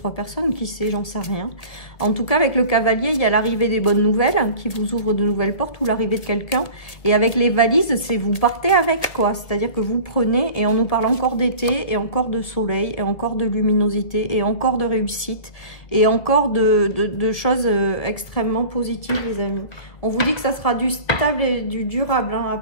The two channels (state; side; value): late; right; 2.0 ms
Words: personnes. Qui sait, j'en sais rien. En tout cas, avec le cavalier, il y a l'arrivée des bonnes nouvelles qui vous ouvrent de nouvelles portes ou l'arrivée de quelqu'un. Et avec les valises, c'est vous partez avec, quoi. C'est-à-dire que vous prenez, et on nous parle encore d'été, et encore de soleil, et encore de luminosité, et encore de réussite, et encore de choses extrêmement positives, les amis. On vous dit que ça sera du stable et du durable, hein,